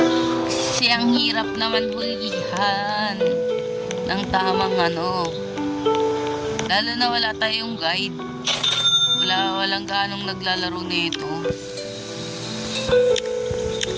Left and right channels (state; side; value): identical; both; correlation 1.00